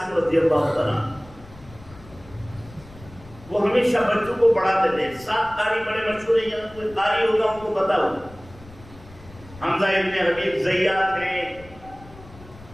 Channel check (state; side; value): noise; left; rumble, 20 dB below the sound